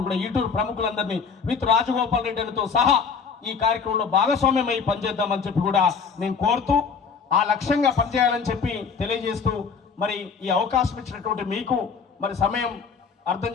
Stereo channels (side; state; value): right; quieter; 5.8 dB